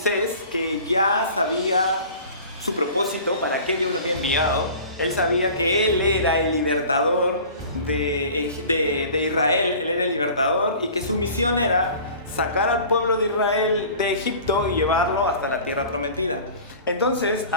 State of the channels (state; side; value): inverted; both; correlation -0.43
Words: que ya sabía su propósito, para qué Dios lo había enviado. Él sabía que él era el libertador de Israel, él era el libertador y que su misión era sacar al pueblo de Israel de Egipto y llevarlo hasta la tierra prometida. Entonces,